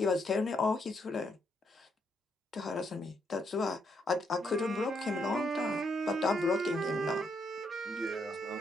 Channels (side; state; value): both; normal; correlation 0.76